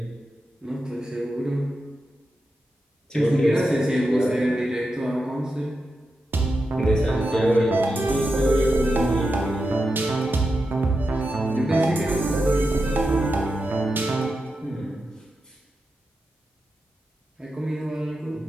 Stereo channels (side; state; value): both; normal; correlation 0.89